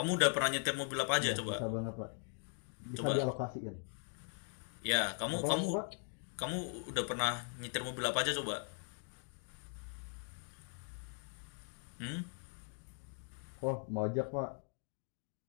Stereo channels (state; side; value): silent; right; 51 dB below the other